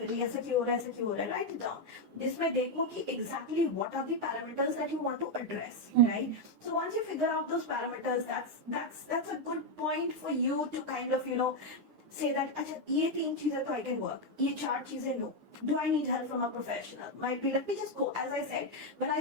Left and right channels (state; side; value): late; left; 9.8 ms